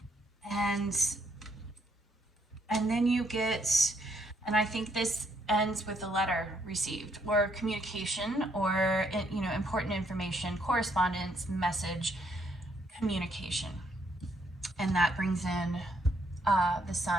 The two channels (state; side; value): normal; both; correlation 0.72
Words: And then you get, and I think this ends with a letter received or communication or, you know, important information, correspondence, message, communication. And that brings in the